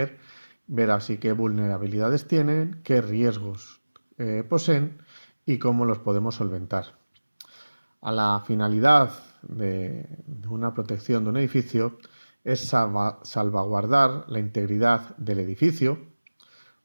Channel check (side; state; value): both; inverted; correlation -1.00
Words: ver así qué vulnerabilidades tienen, qué riesgos poseen y cómo los podemos solventar. A la finalidad de una protección de un edificio es salvaguardar la integridad del edificio,